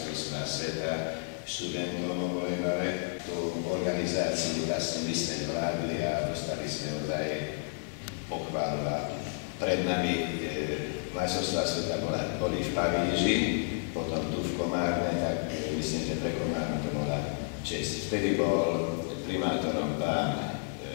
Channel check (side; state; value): right; silent; digital silence